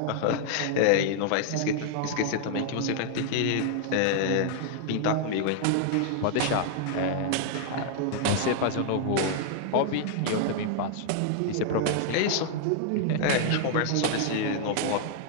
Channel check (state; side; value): different; both; correlation 0.00